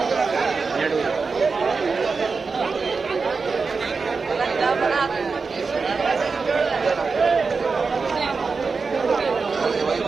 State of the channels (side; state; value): left; quieter; 4.7 dB